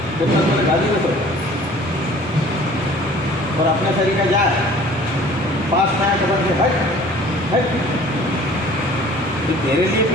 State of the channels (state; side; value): normal; both; correlation 0.49